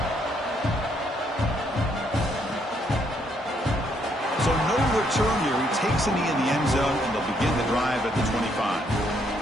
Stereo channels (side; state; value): both; normal; correlation 0.72